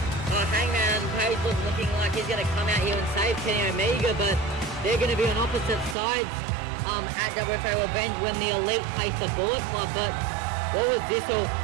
Hangman Page was looking like he's going to come out here and save Kenny Omega, but they're going to be on opposite sides at WFA Revenge when the Elite face the Bullet Club. But what was this all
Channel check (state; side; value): drops out; left; at 6.0 s